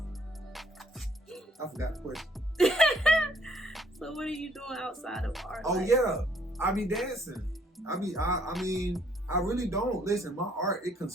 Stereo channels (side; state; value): both; normal; correlation 0.65